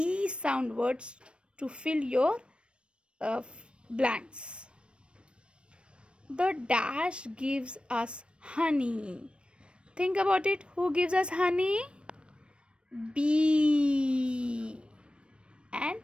sound words to fill your blanks. The dash gives us honey. Think about it. Who gives us honey? Bee. And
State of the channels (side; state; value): left; late; 0.058 ms